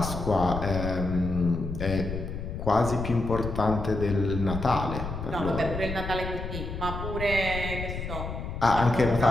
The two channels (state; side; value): noise; left; rumble, 6 dB below the sound